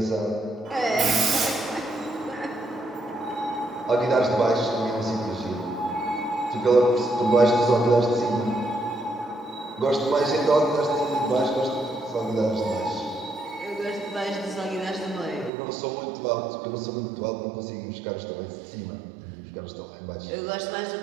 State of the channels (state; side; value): drops out; left; at 15.5 s